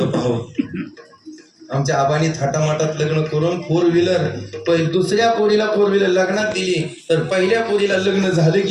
पाहावं. आमच्या आबानी थाटामाटात लग्न करून 4 व्हीलर, दुसऱ्या पोरीला 4 व्हीलर लग्नात दिली, तर पहिल्या पोरीला लग्न झालं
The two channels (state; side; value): identical; both; correlation 1.00